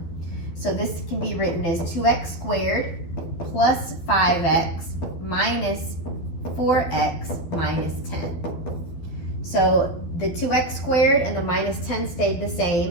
So this can be written as 2x squared plus 5x minus 4x minus 10. So the 2x squared and the minus 10 stayed the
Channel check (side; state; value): right; late; 12 ms